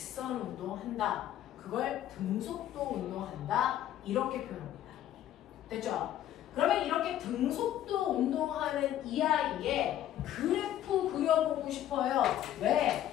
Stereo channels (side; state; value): right; quieter; 12.0 dB